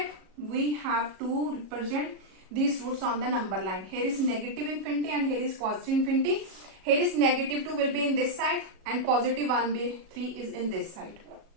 we have to represent these roots on the number line. Here is negative infinity and here is positive infinity. Here is negative 2 will be in this side and positive 1 by 3 is in this side.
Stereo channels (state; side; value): late; left; 37 ms